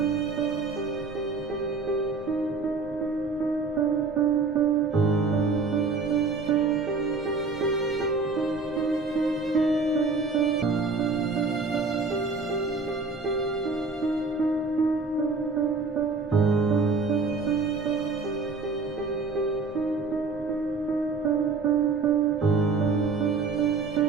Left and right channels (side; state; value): left; quieter; 4.2 dB